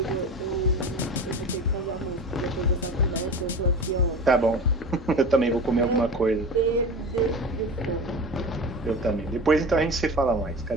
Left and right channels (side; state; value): both; normal; correlation 0.32